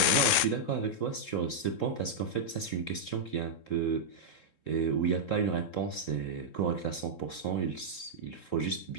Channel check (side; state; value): right; late; 3.7 ms